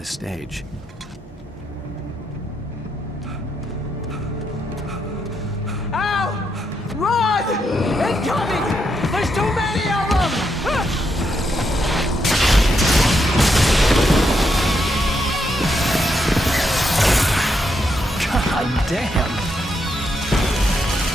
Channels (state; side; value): normal; both; correlation 0.80